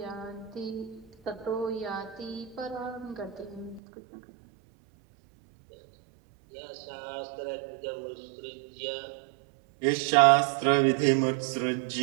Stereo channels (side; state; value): left; drops out; at 3.8 s